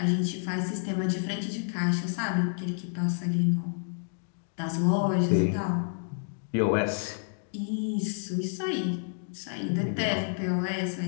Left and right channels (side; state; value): right; silent; digital silence